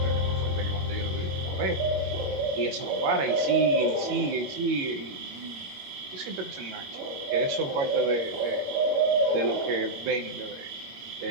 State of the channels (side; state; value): left; late; 22 ms